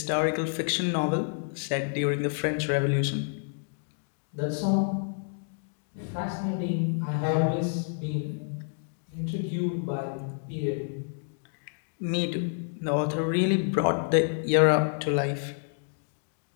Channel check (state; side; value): silent; right; digital silence